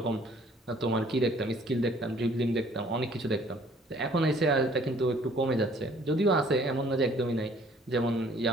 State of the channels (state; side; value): normal; both; correlation 0.57